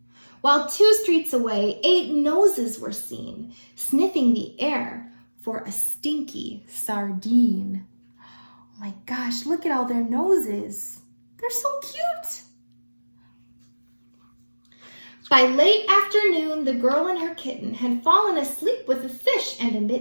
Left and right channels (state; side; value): inverted; both; correlation -1.00